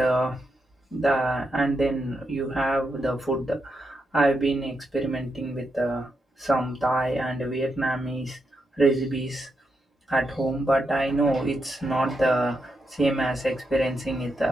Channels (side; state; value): both; normal; correlation 0.83